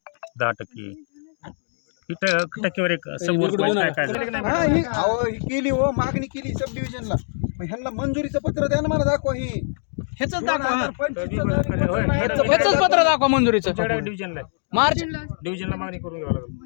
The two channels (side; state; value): right; silent; digital silence